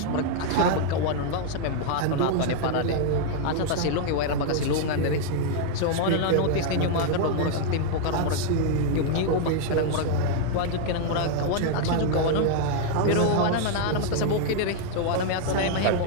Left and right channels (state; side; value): different; both; correlation 0.00